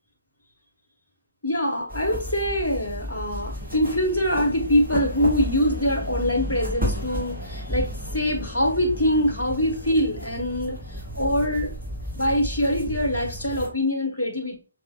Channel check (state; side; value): inverted; both; correlation -0.53